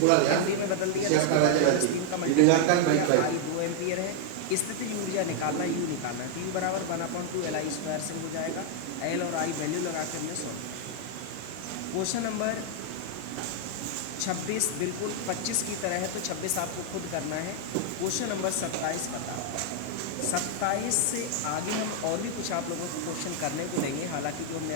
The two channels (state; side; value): different; both; correlation 0.00